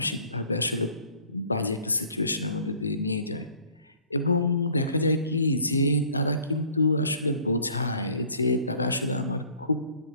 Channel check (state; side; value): inverted; both; correlation -0.54